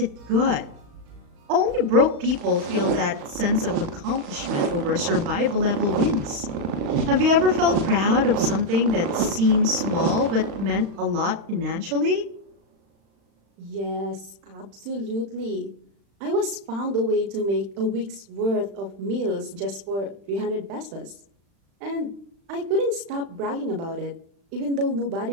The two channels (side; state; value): left; late; 36 ms